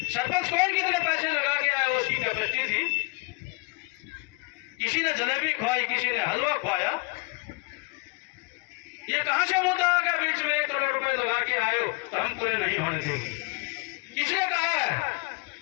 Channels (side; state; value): right; quieter; 30.1 dB